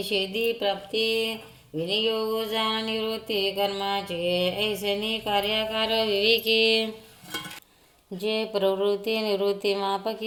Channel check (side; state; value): both; identical; correlation 1.00